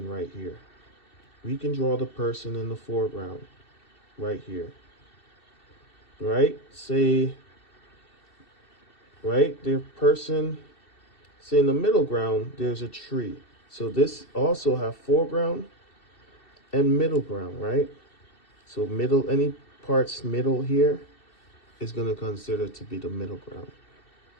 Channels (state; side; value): late; right; 2.7 ms